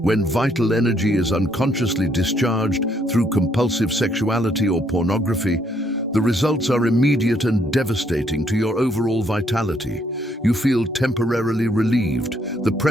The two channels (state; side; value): normal; both; correlation 0.70